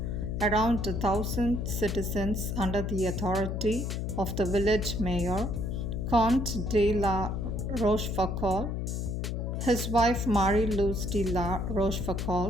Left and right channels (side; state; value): left; noise; hum, 2 dB below the sound